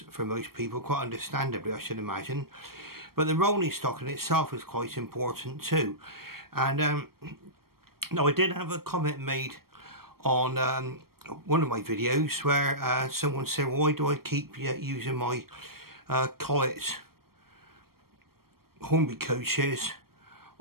for most people, quite understandably I should imagine, but the rolling stock in itself is quite important too. And now I did have a comment made on one of my videos where someone said, why do I keep using my Collet Hornby coaches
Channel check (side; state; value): left; late; 0.94 ms